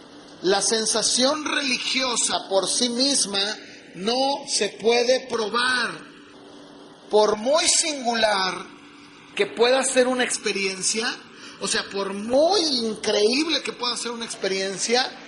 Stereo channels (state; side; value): identical; both; correlation 1.00